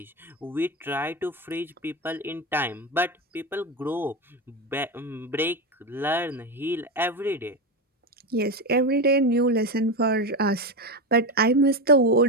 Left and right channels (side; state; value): both; normal; correlation 0.15